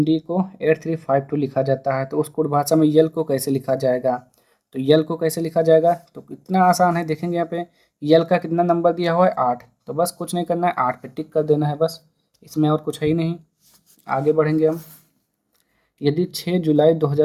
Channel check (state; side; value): identical; both; correlation 1.00